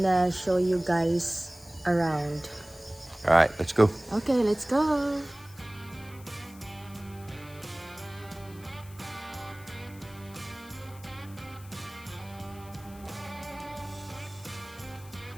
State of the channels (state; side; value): noise; left; hiss, 22 dB below the sound